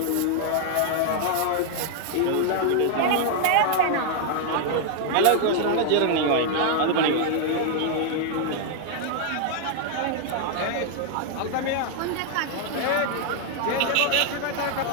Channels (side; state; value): both; different; correlation 0.00